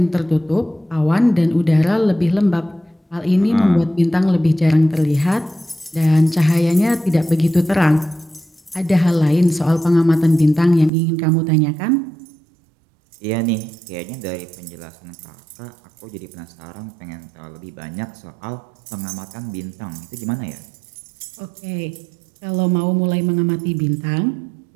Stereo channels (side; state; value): left; drops out; at 10.9 s